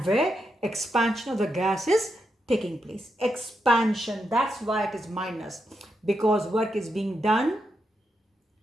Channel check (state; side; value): normal; both; correlation 0.84